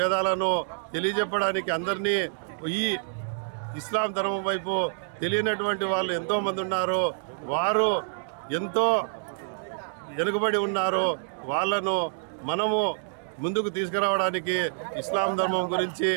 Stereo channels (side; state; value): left; silent; digital silence